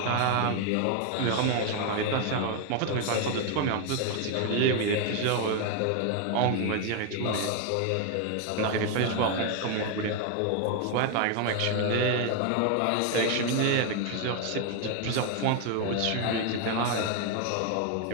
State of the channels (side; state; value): both; different; correlation 0.01